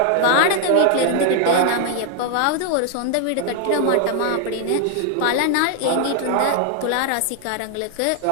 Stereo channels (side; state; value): both; different; correlation 0.00